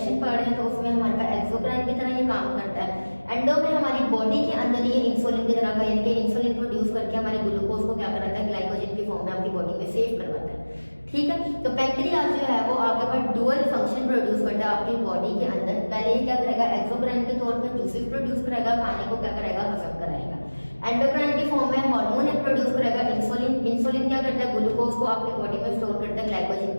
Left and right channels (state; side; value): inverted; both; correlation -1.00